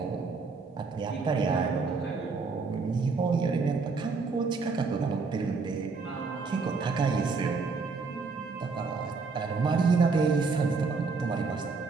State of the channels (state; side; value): quieter; left; 4.4 dB